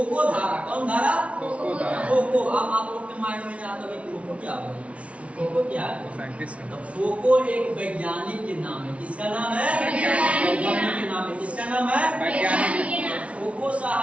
धारा। कौन धारा, खोको। अब आप लोग के माइंड में आता है खोको क्या है, फोको क्या है, तो फोको एक वैज्ञानिक के नाम है। किसका नाम है, वैज्ञानिक के नाम है। किसका नाम है, वैज्ञानिक। फोको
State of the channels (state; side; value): late; left; 0.063 ms